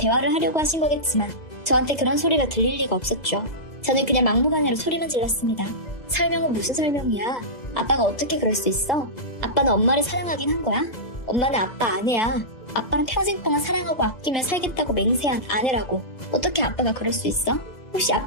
하려고 하신 거겠지만 저한테 그런 소리가 들릴 리가 없었죠. 저는 그냥 막무가내로 소리만 질렀습니다. 설명은 무슨 설명이야? 아빠가 어떻게 그럴 수 있어? 아빠는 엄마를 사랑하긴 한 거야? 엄마는 아빠 아내야. 아빠는 평생 동안 사랑하고 아끼며 살겠다고 맹세한 아내라고. 어떻게 아빠가 그럴 수 있어? 혹시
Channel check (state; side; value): late; right; 2.0 ms